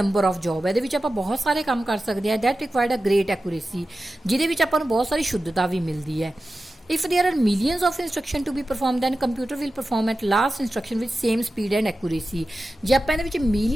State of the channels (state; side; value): normal; both; correlation 0.93